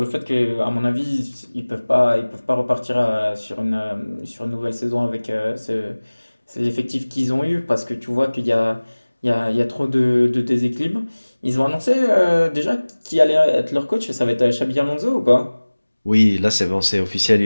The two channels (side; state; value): both; inverted; correlation -1.00